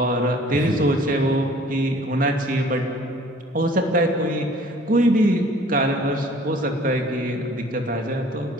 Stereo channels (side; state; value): both; normal; correlation 0.52